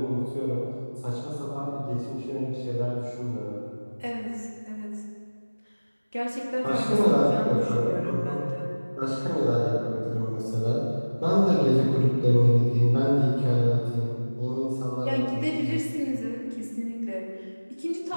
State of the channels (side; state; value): both; inverted; correlation -1.00